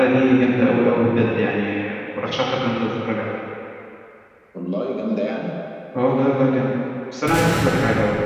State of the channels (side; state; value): both; identical; correlation 1.00